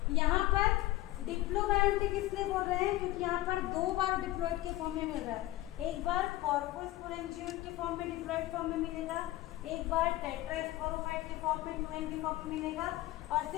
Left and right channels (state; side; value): quieter; right; 16.7 dB